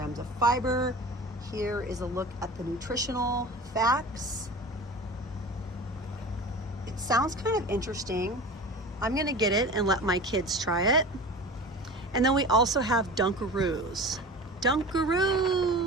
of fiber. Here is a look at the nutritional facts. It sounds kind of interesting. I'm gonna get it and let my kids try it. And then we also have Dunkaroos.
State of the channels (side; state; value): both; normal; correlation 0.35